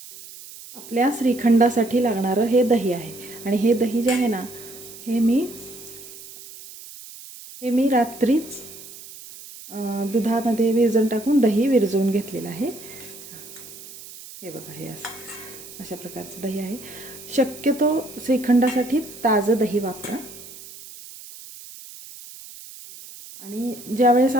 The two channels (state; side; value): noise; right; hiss, 16 dB below the sound